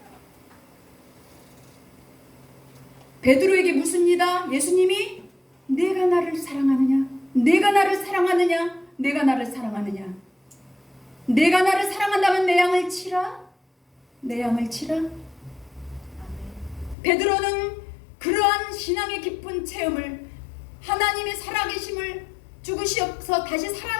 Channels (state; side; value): drops out; right; at 16.9 s